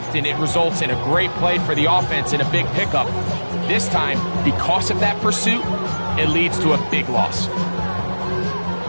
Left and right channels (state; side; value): inverted; both; correlation -1.00